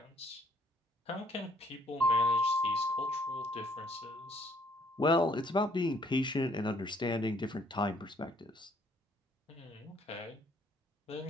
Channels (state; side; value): normal; both; correlation 0.64